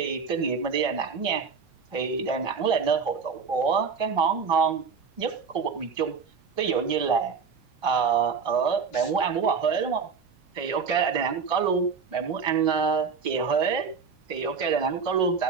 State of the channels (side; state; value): left; quieter; 5.7 dB